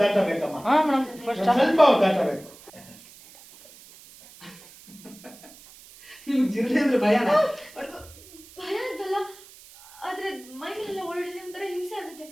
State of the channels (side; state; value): right; noise; hiss, 21 dB below the sound